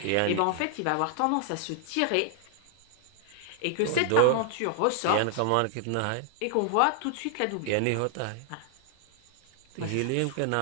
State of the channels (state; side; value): different; both; correlation 0.00